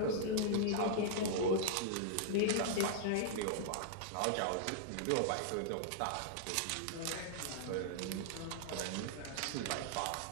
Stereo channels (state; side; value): different; both; correlation -0.01